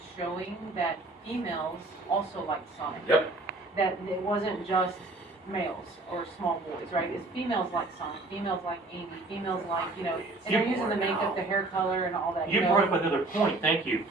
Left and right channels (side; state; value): left; quieter; 3.0 dB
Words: showing that females also like Sonic. Yep. That it wasn't just males or small boys, right? It's females like Sonic, females like Amy, females like, you know, and they're using the makeup, the hair color, and all that. You know? brought up another point. Thank you.